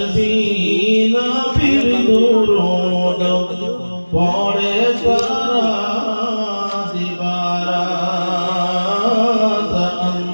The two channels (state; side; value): inverted; both; correlation -1.00